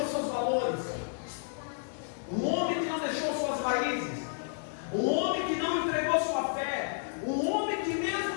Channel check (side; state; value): right; silent; digital silence